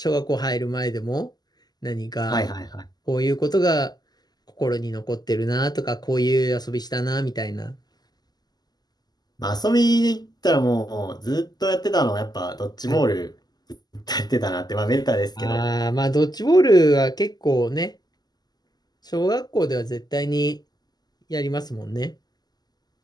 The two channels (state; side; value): late; right; 0.20 ms